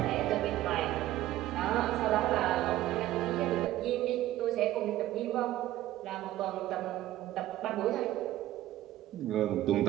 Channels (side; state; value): left; quieter; 14.6 dB